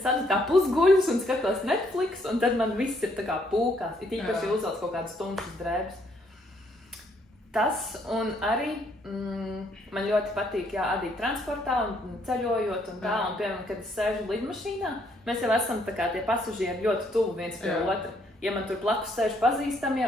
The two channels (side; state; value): both; normal; correlation 0.70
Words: tā pusguļus un skatos Netflix, un tad man viss ir tā kā pūkās. Ir īpaši uzvelc kaut kādas tumšas drēbes. Tas un arī man ļoti patīk adīt transportā un ceļojot un tā. Un, piemēram, kad es sēžu lidmašīnā, mēs jau esam tā kā tie pasažieri ļoti tuvu viens pie otra. Ja man tur blakus sēž pazīstamie,